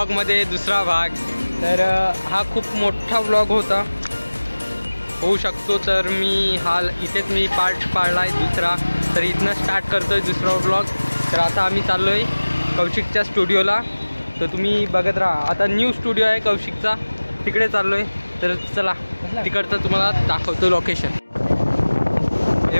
दुसरा भाग। तर हा खूप मोठा व्लॉग होता, होऊ शकतो, तर मी इथेच मी पार्ट पाडला आहे दुसरा। तर इथनं स्टार्ट करतो आहे दुसरा व्लॉग। तर आता आम्ही चाललो आहे कौशिकच्या स्टुडिओला. तर तुम्ही बघत राहा. आता न्यू स्टुडिओ आहे कौशिकचा, तिकडे चाललो आहे. तर चला तिकडचं तुम्हाला दाखवतो लोकेशन. हे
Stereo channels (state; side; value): inverted; both; correlation -1.00